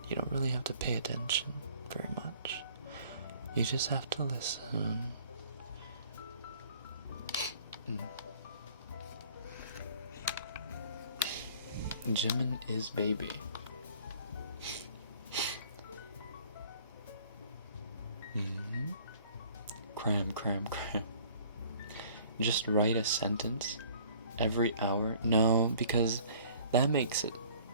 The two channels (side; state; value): both; inverted; correlation -0.54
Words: You don't really have to pay attention very much. You just have to listen. Jimin is baby. Cram. Just write a sentence every hour. No, because that makes it